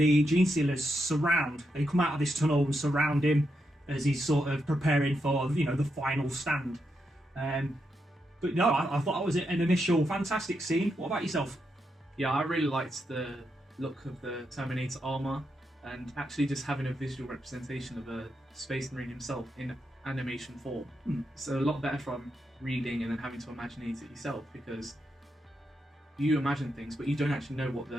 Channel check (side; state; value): both; normal; correlation 0.83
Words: Gene Stealers they come out of this tunnel and surround him as he's sort of preparing for, the final stand. But no, I thought that was an initial fantastic scene. What about yourself? Yeah, I really liked the look of the Terminator armor, and actually just having a visual representation of a Space Marine himself in animation form. It's a lot better from reading and then having to imagine it yourself, because you imagine things but you don't actually know what